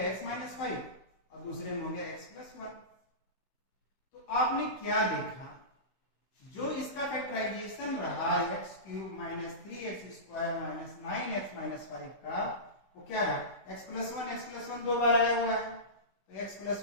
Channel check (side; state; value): right; late; 16 ms